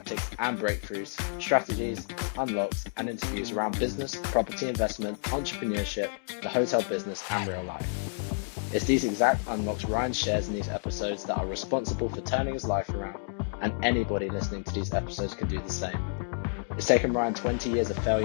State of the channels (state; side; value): silent; right; digital silence